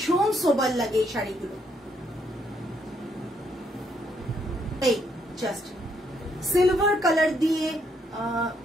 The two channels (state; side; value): normal; both; correlation 0.73